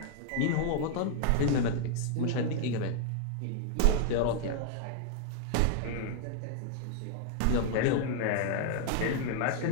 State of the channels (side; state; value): both; different; correlation -0.01